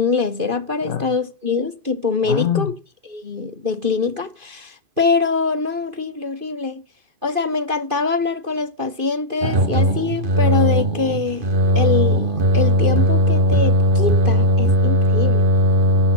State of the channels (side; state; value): left; late; 2.5 ms